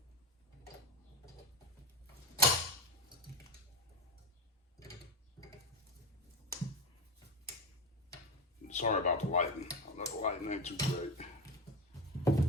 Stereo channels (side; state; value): both; normal; correlation 0.19